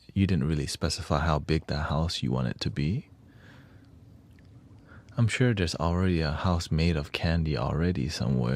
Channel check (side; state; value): both; identical; correlation 1.00